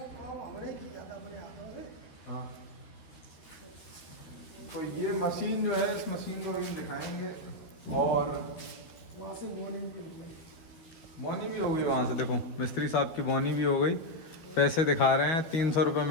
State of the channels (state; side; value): late; right; 12 ms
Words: काम हमने किया था अपने हाथों से। हाँ, तो ये मशीन जो है, इस मशीन को भी हम दिखाएंगे। और वहाँ से मॉर्निंग भी हो गई। बोनी भी होगी वहाँ से, देखो मिस्त्री साहब की बोनी भी हो गई। पैसे दिखा रहे हैं, 300 रुपये